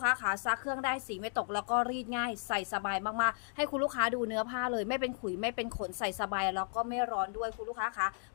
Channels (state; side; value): silent; right; 55 dB below the other